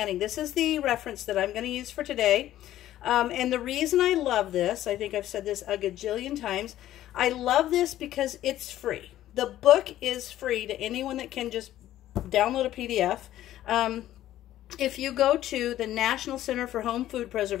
This is the reference that I'm going to use for today. And the reason I love this, I think I've said this a gajillion times, I love this because it's free. The book is free to anyone that can just download a PDF. If you go to the National Center for Home Food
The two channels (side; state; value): right; quieter; 13.3 dB